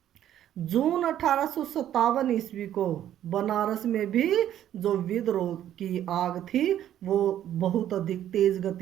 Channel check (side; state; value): left; quieter; 11.3 dB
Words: जून 1857 ईस्वी को बनारस में भी जो विद्रोह की आग थी वो बहुत अधिक तेज